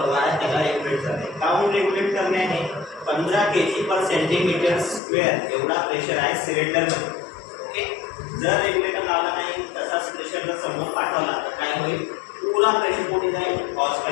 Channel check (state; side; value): drops out; right; at 5.0 s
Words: आहे त्याला रेग्युलेट करणे. काऊन रेग्युलेट करणे आहे? 15 kg/cm² एवढा प्रेशर आहे सिलेंडरमध्ये. ओके, जर रेग्युलेटर लावला नाही तसाच प्रेशर जर समोर पाठवला तर काय होईल? पुरा प्रेशर कुठे जाईल? हॉस